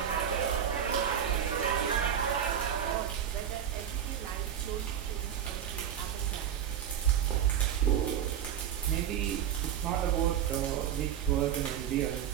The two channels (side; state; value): left; quieter; 9.4 dB